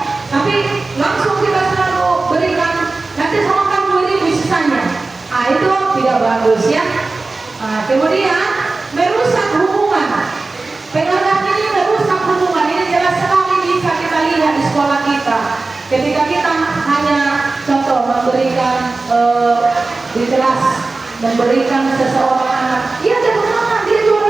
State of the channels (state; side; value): quieter; left; 3.6 dB